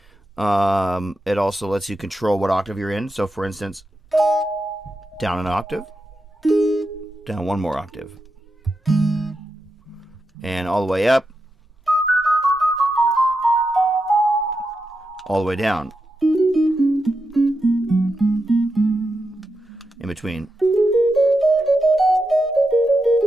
It also lets you control what octave you're in. So, for instance, down an octave, down one more octave, and all the way up, all the way down, in between.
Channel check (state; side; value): normal; both; correlation 0.87